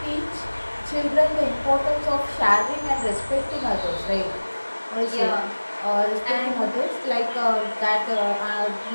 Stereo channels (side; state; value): both; inverted; correlation -1.00